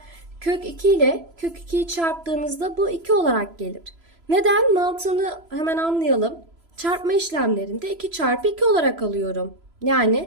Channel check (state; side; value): late; left; 3.0 ms